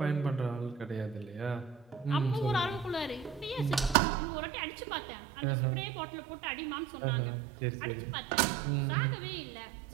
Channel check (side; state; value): left; drops out; at 4.0 s